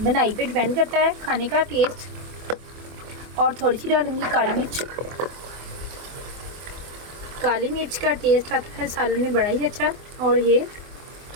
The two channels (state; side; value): late; left; 24 ms